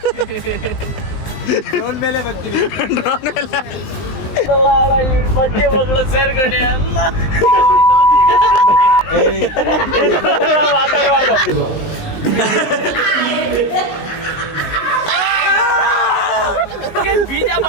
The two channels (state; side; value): late; right; 19 ms